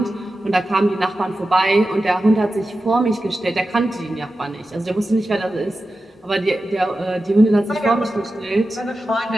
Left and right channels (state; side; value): normal; both; correlation 0.92